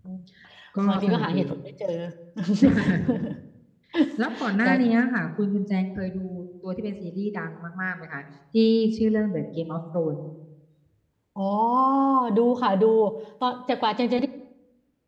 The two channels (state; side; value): identical; both; correlation 1.00